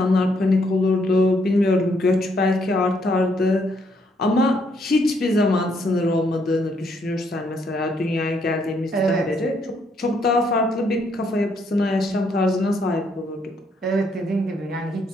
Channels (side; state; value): both; normal; correlation 0.72